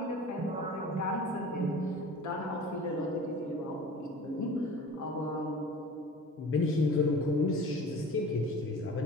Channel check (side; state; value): both; normal; correlation 0.40